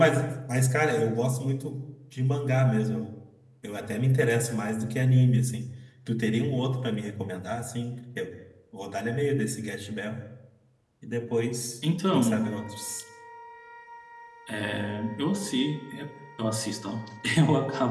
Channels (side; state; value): both; identical; correlation 1.00